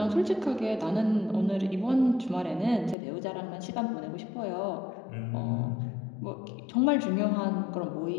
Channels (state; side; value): drops out; right; at 3.0 s